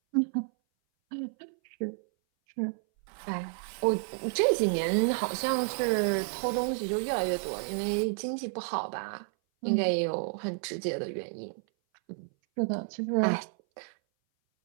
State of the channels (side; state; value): left; silent; 57 dB below the other